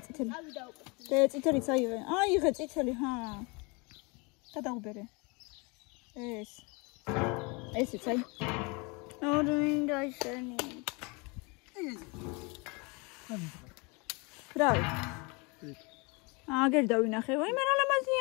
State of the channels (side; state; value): right; quieter; 29.2 dB